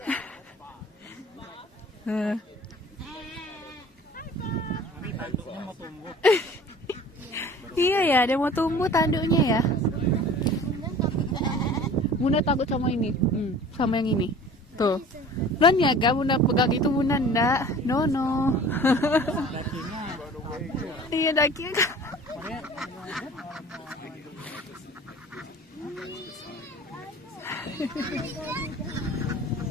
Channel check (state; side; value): normal; both; correlation 0.44